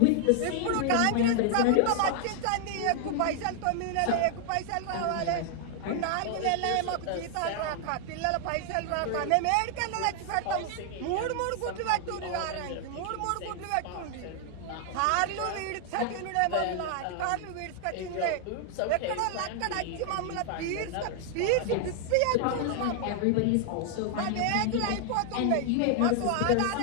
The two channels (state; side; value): different; both; correlation 0.00